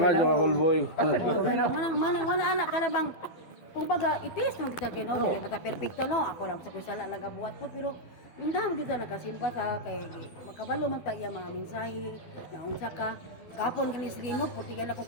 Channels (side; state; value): right; late; 12 ms